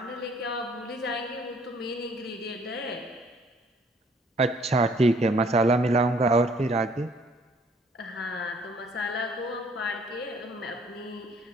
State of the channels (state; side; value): normal; both; correlation 0.60